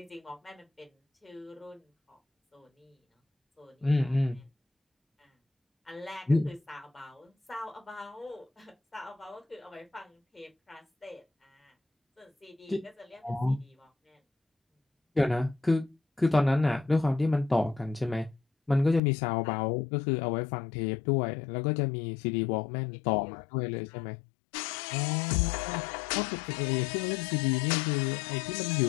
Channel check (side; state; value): right; drops out; at 19.0 s